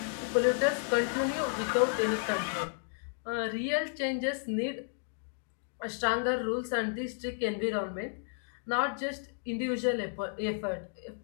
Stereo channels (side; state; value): right; silent; digital silence